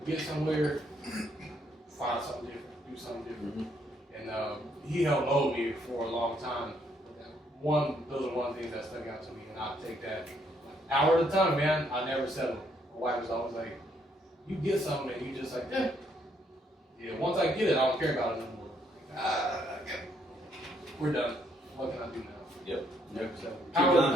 get somewhere, find something different, do something different. Mm-hmm. And he helped mold me for a long time. Those are one of the things that stuck out to me, and I'll take that hour at a time, man. I never settle. My wife was always like, you get something, and you just like, yeah, once I get it, I don't care about it anymore. Like, okay. We're done. What can I do now? Yep. Never settle. Keep Power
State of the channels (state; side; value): normal; both; correlation 0.71